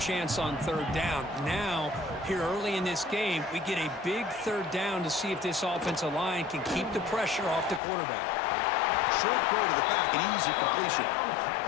on third down. Now, here early in this game, we get a big third down to see if this offensive line can keep the pressure off the quarterback. Short throw to the back, an easy completion.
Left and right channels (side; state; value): right; drops out; at 7.8 s